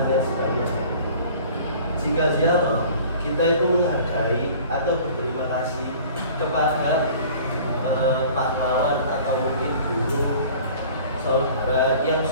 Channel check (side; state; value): both; inverted; correlation -0.47